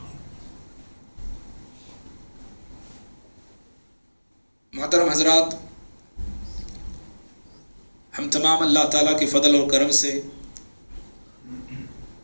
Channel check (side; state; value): both; inverted; correlation -1.00